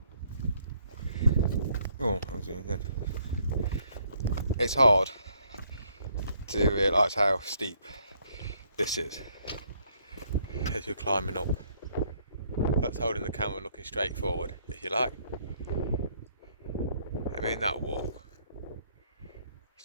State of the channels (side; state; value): both; inverted; correlation -0.68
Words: Oh, I was doing good. It's hard to realise how steep this is as you're climbing up. That's holding the camera looking straight forward, if you like. I mean, that walk.